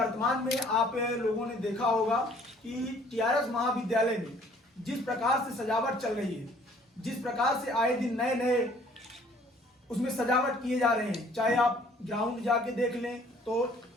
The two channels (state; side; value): normal; both; correlation 0.58